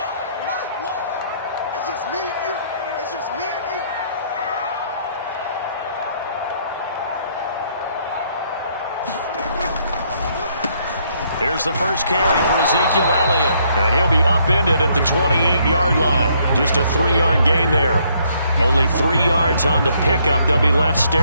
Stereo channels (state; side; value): inverted; both; correlation -0.69